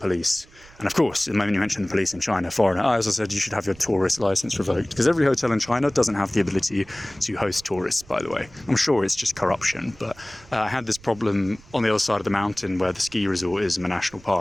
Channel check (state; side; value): noise; right; rumble, 23 dB below the sound